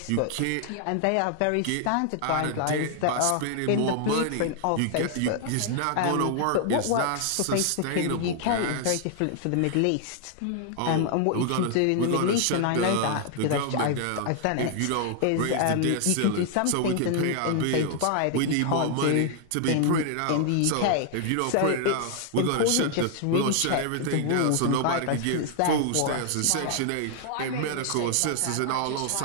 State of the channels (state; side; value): different; both; correlation 0.00